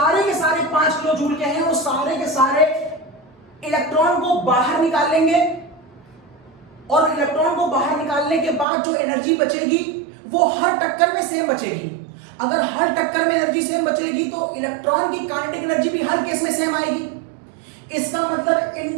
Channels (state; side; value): drops out; left; at 8.7 s